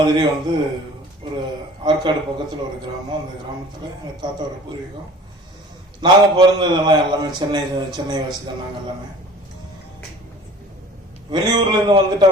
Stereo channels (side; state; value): both; normal; correlation 0.45